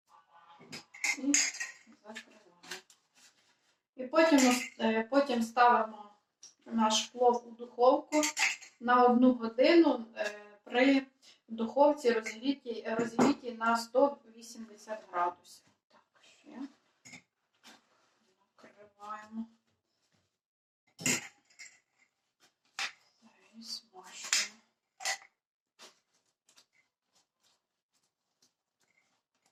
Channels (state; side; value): identical; both; correlation 1.00